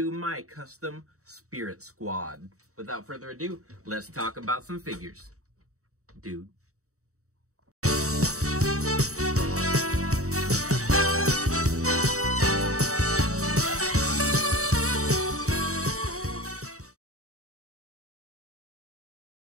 my custom Spirit Squad. Without further ado, let's talk about some figures. Dude.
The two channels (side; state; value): left; late; 0.65 ms